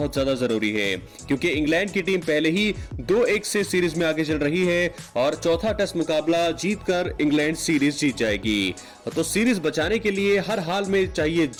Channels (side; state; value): both; identical; correlation 1.00